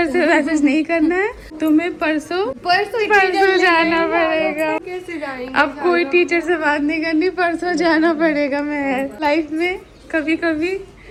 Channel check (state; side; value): identical; both; correlation 1.00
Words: से मैसेज नहीं करना है तुम्हें, परसों जाना पड़ेगा। कैसे जाएंगे? अब कोई टीचर से बात नहीं करनी, परसों जाना पड़ेगा। मैं लाइफ में कभी कभी,